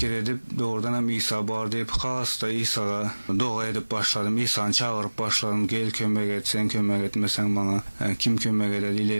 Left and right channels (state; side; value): inverted; both; correlation -1.00